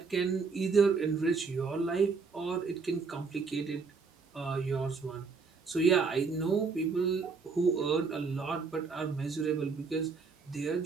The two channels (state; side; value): quieter; left; 4.8 dB